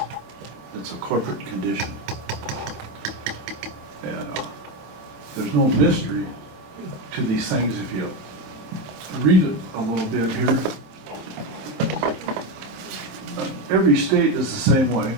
It's a corporate condition. And there's no mystery to these things if you read it a little bit here. Every state is the same way.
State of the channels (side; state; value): left; late; 26 ms